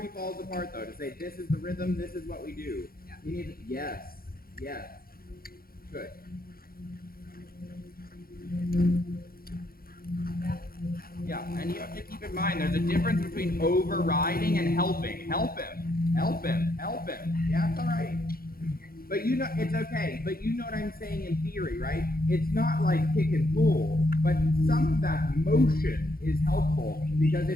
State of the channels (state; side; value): late; right; 0.43 ms